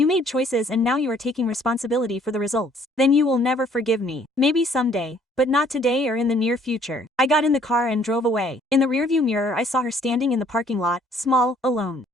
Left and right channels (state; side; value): normal; both; correlation 0.61